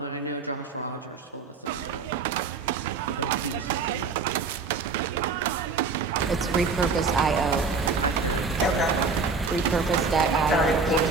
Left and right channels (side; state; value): left; quieter; 4.5 dB